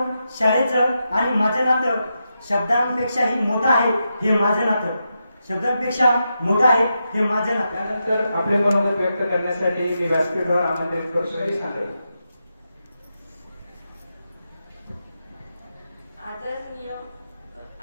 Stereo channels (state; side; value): inverted; both; correlation -0.86